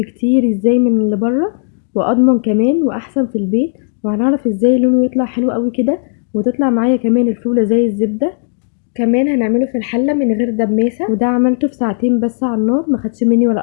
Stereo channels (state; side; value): silent; right; 63 dB below the other